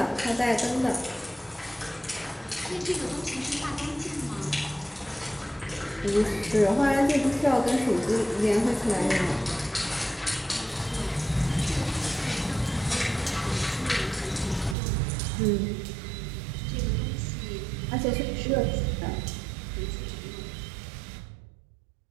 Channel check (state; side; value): drops out; left; at 14.8 s